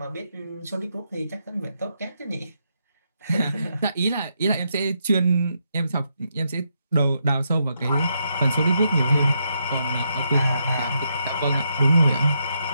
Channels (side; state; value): both; inverted; correlation -0.80